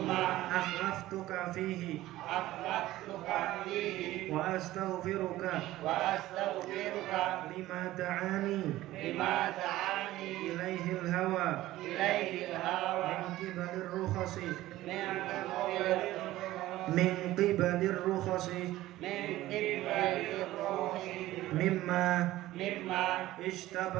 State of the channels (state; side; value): quieter; left; 15.9 dB